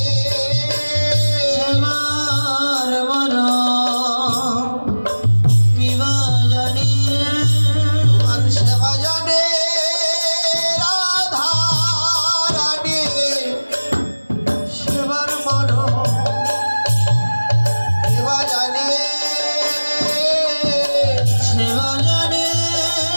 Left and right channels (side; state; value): both; inverted; correlation -1.00